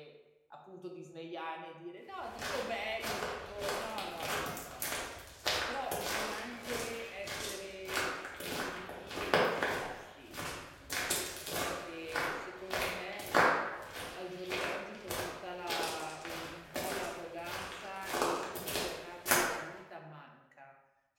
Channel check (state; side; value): identical; both; correlation 1.00